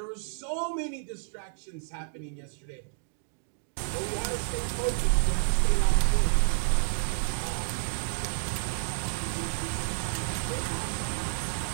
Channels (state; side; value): silent; left; digital silence